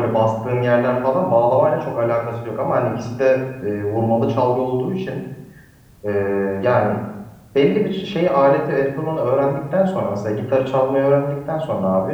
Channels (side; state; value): both; identical; correlation 1.00